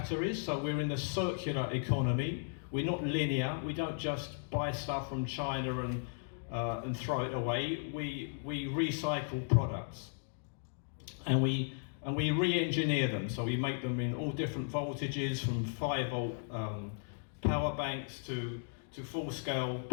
So we're in the circular economy. We're not linear. We don't just buy stuff from China and throw it away. We recycle products, and we re-engineer them. So we make them in all different voltages, from 5-volt power banks to full-scale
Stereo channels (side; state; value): right; silent; digital silence